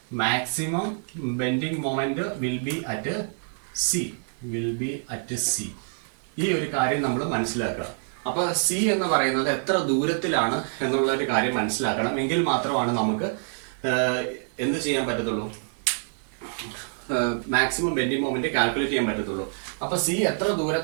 maximum bending moment will be at C. Will be at C. ഈ ഒരു കാര്യം നമ്മൾ മനസ്സിലാക്കുക. അപ്പൊ സി എന്ന് പറയുന്നത് എത്ര ദൂരത്തിലാണ് എന്നുള്ള ഒരു കാര്യം മനസ്സിലാക്കണം. എങ്കിൽ മാത്രമാണ് നമുക്ക് എന്ത് ചെയ്യാൻ പറ്റത്തുള്ളൂ, മാക്സിമം ബെൻഡിങ് മൊമെന്റ് കാൽക്കുലേറ്റ് ചെയ്യാൻ പറ്റത്തുള്ളൂ. അപ്പൊ സി എത്ര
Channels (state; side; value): silent; left; digital silence